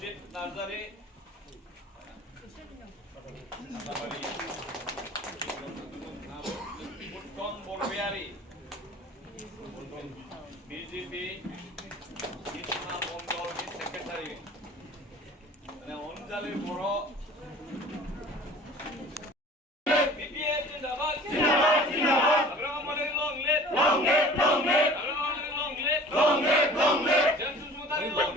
নার্জারি উত্তম বড়বিহারী BJP Krishna Mondal secretary, মানে অঞ্জলি বড় BPF জিন্দাবাদ জিন্দাবাদ জিন্দাবাদ, আগ্রহ মানে long live long live long live, আগ্রহ মানে লং লিভ লং লিভ।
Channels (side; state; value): both; normal; correlation 0.45